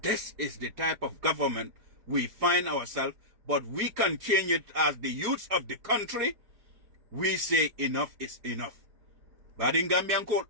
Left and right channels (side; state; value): left; late; 4.8 ms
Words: This is the type of government we find ourselves, but we can change it as the youths of the country. We say enough is enough. But in Gambian call,